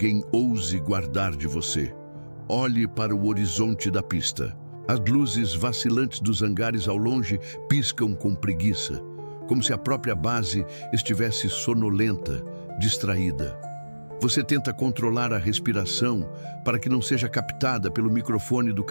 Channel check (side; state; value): both; inverted; correlation -1.00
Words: ouse guardar de você. Olhe para o horizonte da pista. As luzes vacilantes dos hangares ao longe piscam com preguiça, como se a própria base estivesse sonolenta, distraída. Você tenta controlar a respiração para que não seja captada pelo microfone do